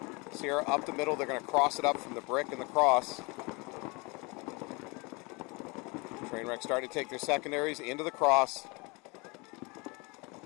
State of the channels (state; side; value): quieter; right; 27.8 dB